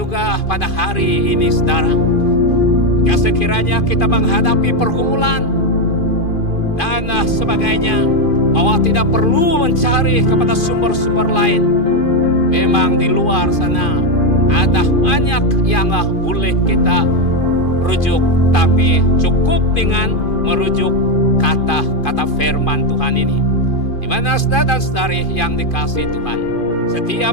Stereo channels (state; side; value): late; right; 2.5 ms